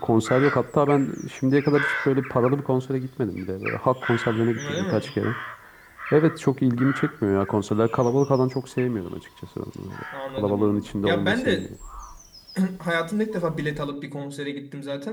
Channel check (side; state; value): both; identical; correlation 1.00